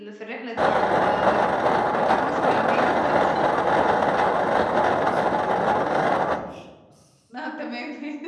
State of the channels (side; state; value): both; identical; correlation 1.00